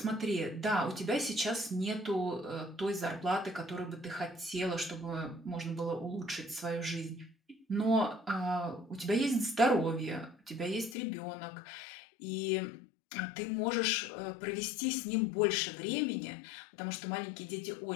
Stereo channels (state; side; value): drops out; right; at 11.0 s